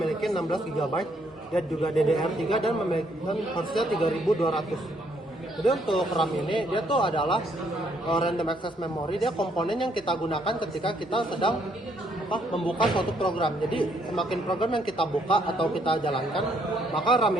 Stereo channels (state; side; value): normal; both; correlation 0.70